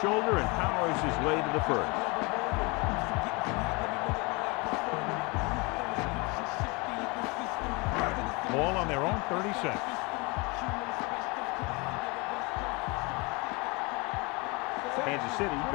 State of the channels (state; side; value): quieter; right; 27.6 dB